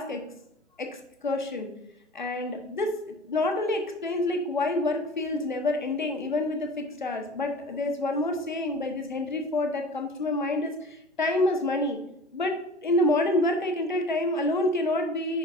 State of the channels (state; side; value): normal; both; correlation 0.40